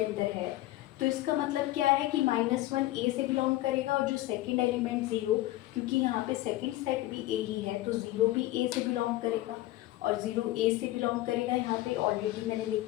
है तो इसका मतलब क्या है कि -1 ए से बिलोंग करेगा, और जो सेकंड एलिमेंट 0, क्योंकि यहाँ पे सेकंड सेट भी ए ही है तो 0 भी ए से बिलोंग करेगा, और 0 ए से बिलोंग करेगा, यहाँ पे ऑलरेडी मैंने लिख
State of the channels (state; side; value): quieter; right; 16.7 dB